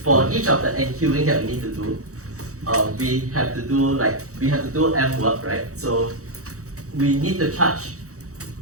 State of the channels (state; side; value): late; left; 0.65 ms